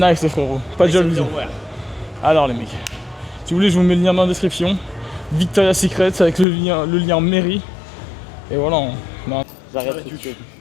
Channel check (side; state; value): right; drops out; at 6.5 s